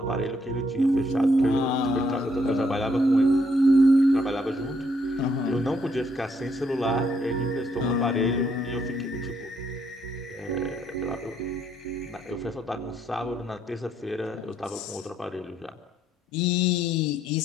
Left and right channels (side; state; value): both; normal; correlation 0.72